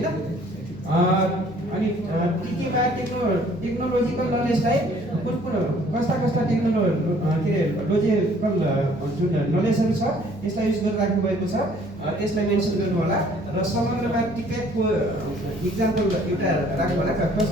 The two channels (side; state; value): left; noise; hum, 27 dB below the sound